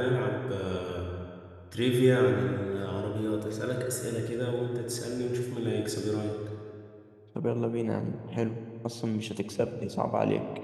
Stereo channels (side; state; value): both; identical; correlation 1.00